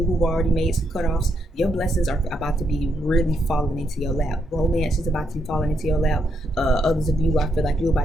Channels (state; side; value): normal; both; correlation 0.77